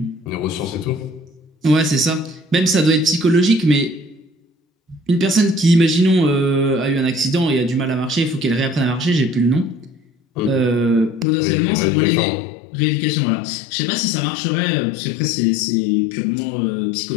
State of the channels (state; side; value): drops out; right; at 11.2 s